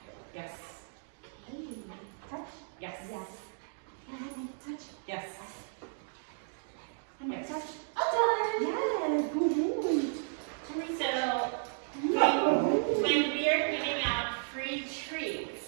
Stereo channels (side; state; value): left; silent; digital silence